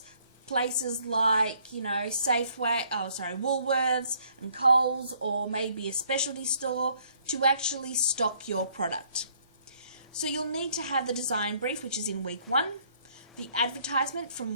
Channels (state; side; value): inverted; both; correlation -0.64